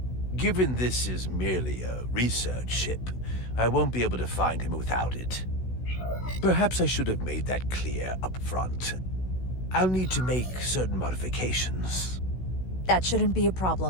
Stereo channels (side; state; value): right; late; 16 ms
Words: Given this is merely a research ship, I won't be able to find him without it. Perhaps I should have made that clear up front. I'll need to make certain modifications. That shouldn't be a